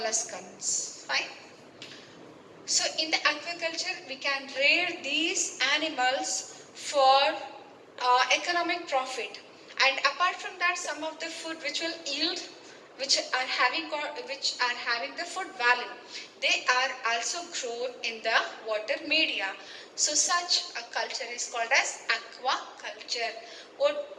Fine. So in the aquaculture, we can rear these animals for economic profit. And apart from that, some of the food which will yield, which are having the food value, they are also grown in the water media. So such a culture is called as aquaculture.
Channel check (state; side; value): identical; both; correlation 1.00